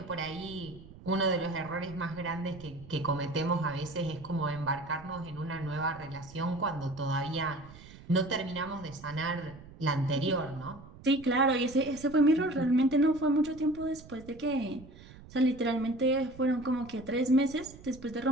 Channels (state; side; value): noise; right; rumble, 19 dB below the sound